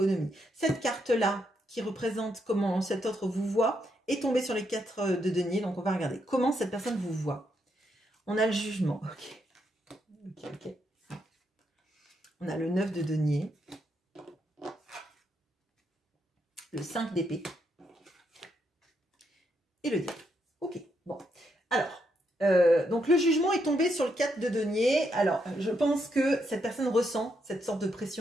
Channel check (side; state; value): both; normal; correlation 0.78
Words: Cette carte-là, qui représente comment cet autre vous voit, est tombée sur les 4 de denier. Donc, on va regarder comment cette personne vous voit. On a le jugement. Ok. On a le 9 de denier. Le 5 d'épée. Et le diable. Ok, bon. Alors, donc le jugement est tombé sur le 4 de denier. Alors, je pense que cette personne ressent cette sorte de